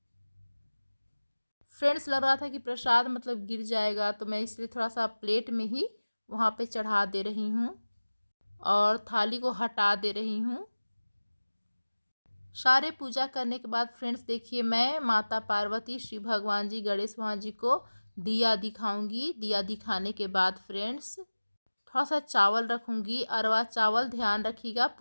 फ्रेंड्स लग रहा था कि प्रसाद मतलब गिर जाएगा, तो मैं इसलिए थोड़ा सा प्लेट में ही वहाँ पे चढ़ा दे रही हूँ और थाली को हटा दे रही हूँ। सारे पूजा करने के बाद फ्रेंड्स देखिए मैं माता पार्वती, शिव भगवान जी, गणेश भगवान जी को दिया दिखाऊंगी। दिया दिखाने के बाद फ्रेंड्स थोड़ा सा चावल रखूंगी, अरवा चावल, ध्यान रखिएगा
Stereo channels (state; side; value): inverted; both; correlation -1.00